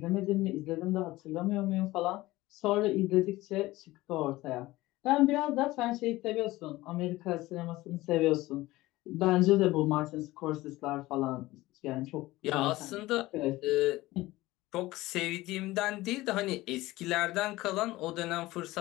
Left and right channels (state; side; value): quieter; right; 18.4 dB